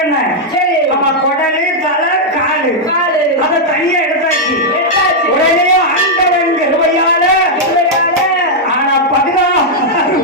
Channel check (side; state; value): both; normal; correlation -0.03